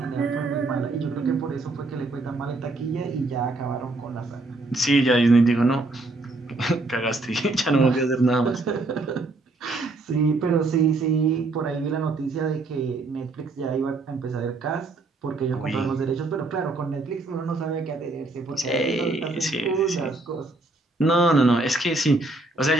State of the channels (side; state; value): left; quieter; 3.1 dB